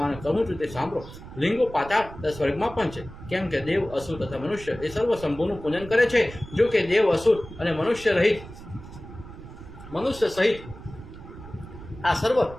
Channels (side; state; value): right; noise; rumble, 15 dB below the sound